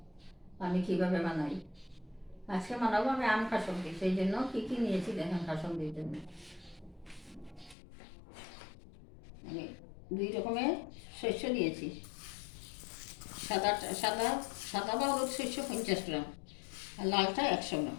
আমি কীভাবে বানাই। আজকে বানাবো আমি আম কাসন্দি, সেই জন্য কী কী নিয়েছি দেখেন। কাসন্দির জন্য আমি 2 রকমের শস্য নিয়েছি। সাদা সাদা সাদা বা হলুদ শস্য 50 গ্রাম, আর লালটা 100 গ্রাম।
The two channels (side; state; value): right; drops out; at 7.8 s